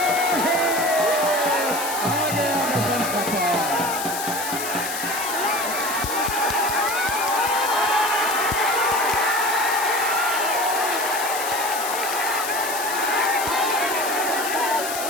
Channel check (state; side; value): noise; left; hiss, 6 dB below the sound